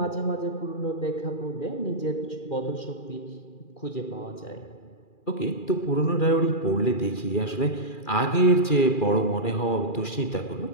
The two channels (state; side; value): late; right; 2.4 ms